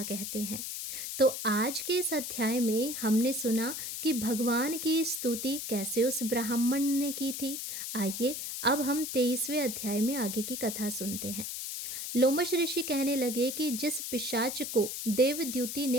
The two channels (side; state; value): left; noise; hiss, 5 dB below the sound